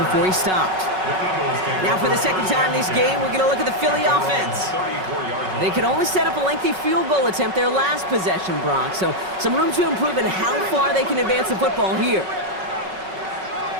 he stopped. Now for the second time this game, we're going to look at the Philly offense. They could only set up a lengthy field goal attempt their last possession, Brock. So some room to improve in how far they can advance the football here.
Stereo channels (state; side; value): late; left; 5.4 ms